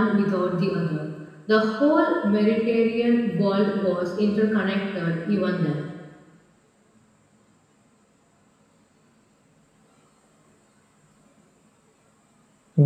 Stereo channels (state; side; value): identical; both; correlation 1.00